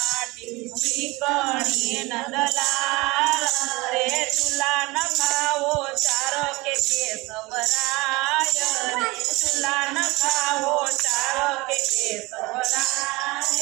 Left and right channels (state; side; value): quieter; left; 22.9 dB